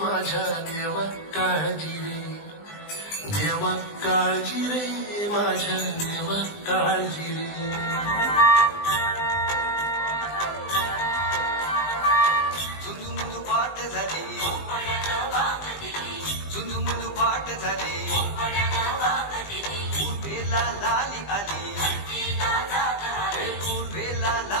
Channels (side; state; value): right; late; 20 ms